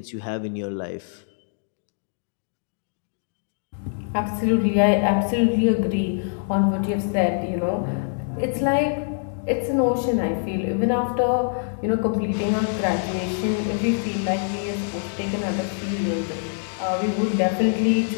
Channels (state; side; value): silent; right; digital silence